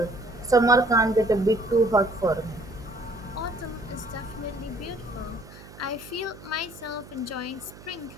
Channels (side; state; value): right; noise; hum, 19 dB below the sound